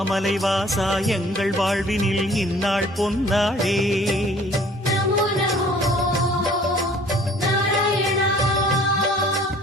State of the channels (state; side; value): normal; both; correlation 0.53